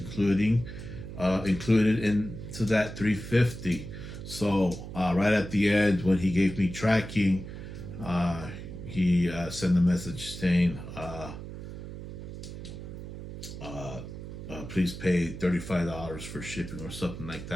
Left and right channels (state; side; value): noise; right; hum, 10 dB below the sound